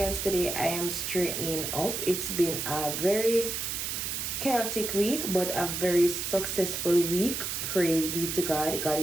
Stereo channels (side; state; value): right; noise; hiss, 3 dB below the sound